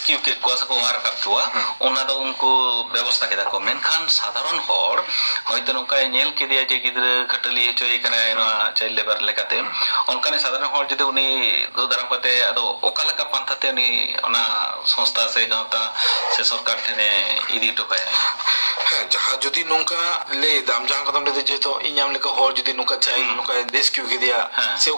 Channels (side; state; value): both; inverted; correlation -1.00